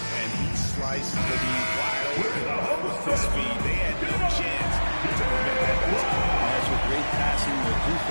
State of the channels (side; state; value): both; inverted; correlation -1.00